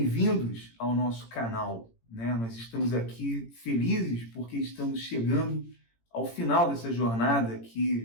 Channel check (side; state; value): right; late; 18 ms